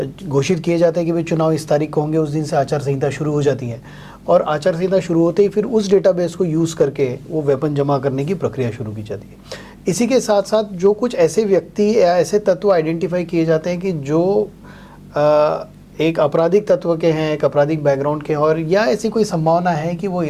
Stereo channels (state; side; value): identical; both; correlation 1.00